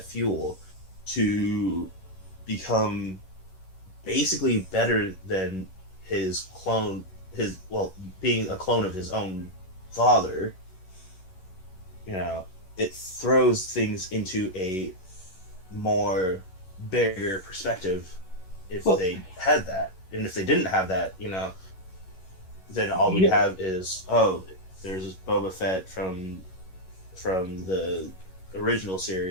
fuel to become basically better than his clone, being a clone of his own father, it throws things into a more bigger perspective if they had that. And if they didn't have that, then all we have is, there's Boba Fett from the original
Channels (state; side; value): late; right; 11 ms